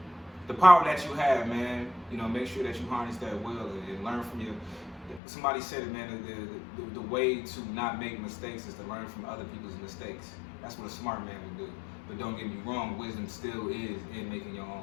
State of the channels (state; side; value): drops out; right; at 5.2 s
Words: The power that you have, man, you know, make sure that you harness that well and learn from your. Somebody said it, man. The way to not make mistakes is to learn from other people's mistakes. That's what a smart man would do. But don't get me wrong, wisdom still is in making your